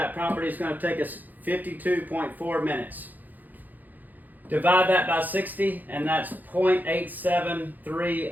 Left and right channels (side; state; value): left; late; 0.084 ms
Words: property is going to take us 52.4 minutes. Divide that by 60, and that's 0.873